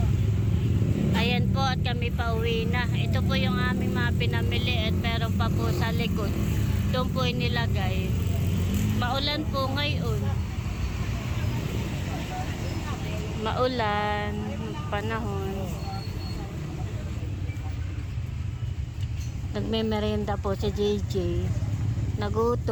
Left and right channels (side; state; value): both; identical; correlation 1.00